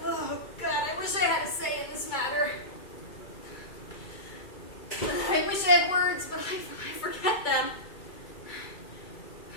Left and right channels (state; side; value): late; right; 2.3 ms